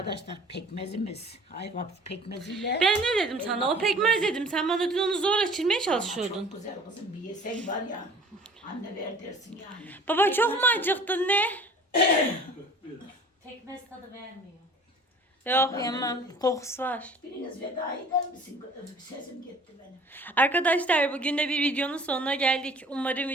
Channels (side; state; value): both; normal; correlation 0.48